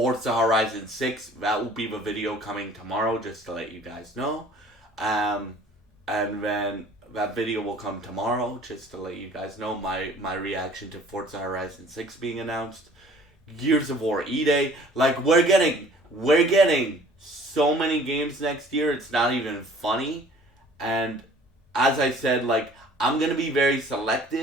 Horizon 6. That will be the video coming tomorrow, just to let you guys know. And then that video will come tomorrow, just to let you guys know my reaction to Forza Horizon 6 being announced. Gears of War E-Day. Like, we're getting so many games next year, it's not even funny. And as I said, like, I'm gonna be very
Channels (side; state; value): both; normal; correlation 0.52